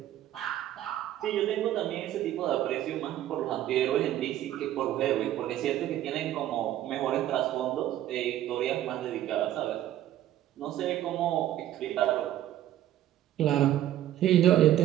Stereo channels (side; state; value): left; quieter; 12.7 dB